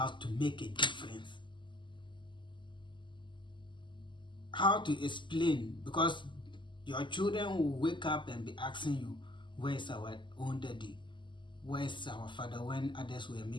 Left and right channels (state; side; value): late; right; 0.23 ms